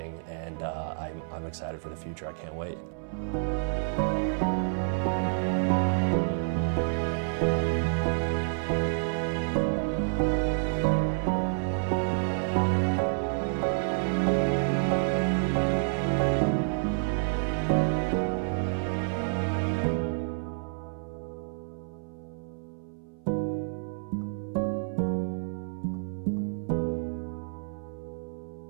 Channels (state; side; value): silent; left; 58 dB below the other